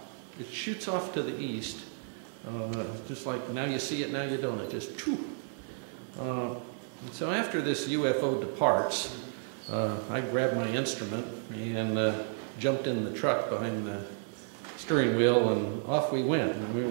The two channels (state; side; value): silent; left; digital silence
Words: it shoots off to the east, just like now you see it, now you don't. It just, choo. So after this UFO departs, I grabbed my instrument and jumped in the truck behind the steering wheel, and off we went. And we